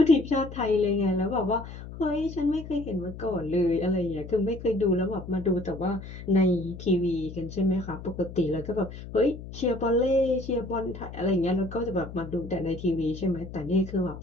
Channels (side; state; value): left; noise; hum, 12 dB below the sound